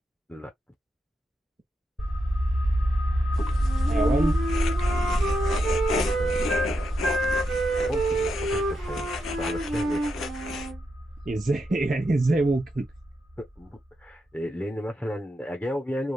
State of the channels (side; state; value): both; normal; correlation 0.84